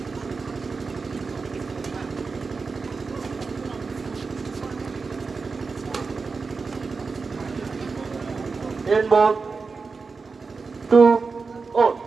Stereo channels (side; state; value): left; quieter; 4.5 dB